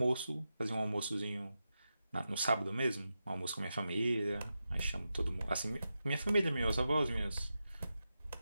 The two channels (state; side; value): inverted; both; correlation -0.90